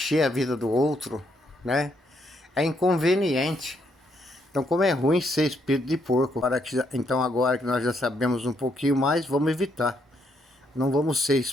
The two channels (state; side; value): normal; both; correlation 0.74